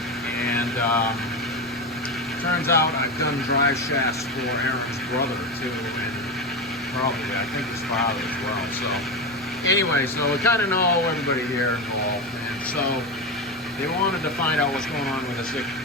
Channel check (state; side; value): normal; both; correlation 0.18